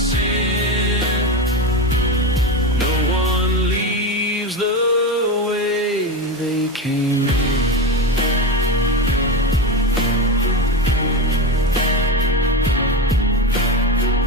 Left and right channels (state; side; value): normal; both; correlation 0.19